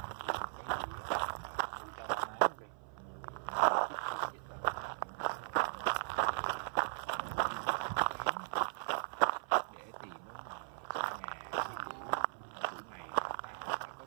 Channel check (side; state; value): left; silent; 52 dB below the other